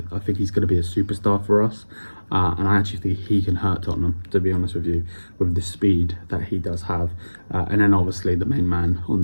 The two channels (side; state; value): both; inverted; correlation -1.00